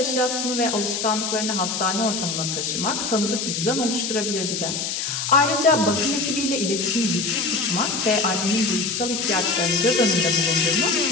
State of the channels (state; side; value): noise; left; hiss, 3 dB below the sound